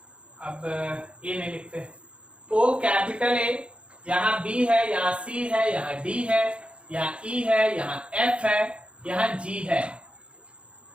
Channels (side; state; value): left; late; 0.059 ms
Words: अब ए नहीं लिखते, ओ कैपिटल ए, यहां बी है, यहां सी है, यहां डी है, यहां ई है, यहां एफ है, यहां जी है।